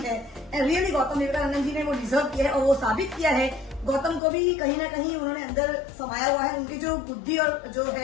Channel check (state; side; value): drops out; right; at 4.2 s